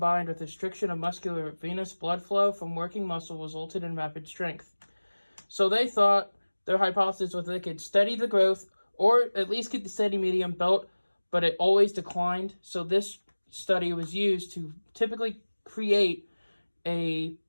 with restriction of muscular venous blood flow from working muscle resulted in rapid strength. So they thought their hypothesis was they could steady the growth or at least keep the steady medium belt, but it always declined. So this study was used to typically create a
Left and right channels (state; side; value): inverted; both; correlation -1.00